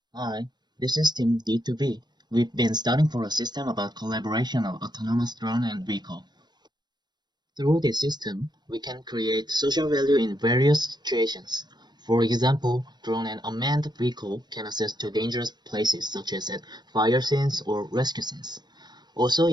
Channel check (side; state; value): left; late; 0.21 ms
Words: Hi, this is Team D2V. We've been studying for a system about collaboration of autonomous drone and vehicle. Through this system, we can create social value in various situations. For example, drone and unmanned vehicle can access to dangerous places such as at fire scenes or rescue scenes. Also,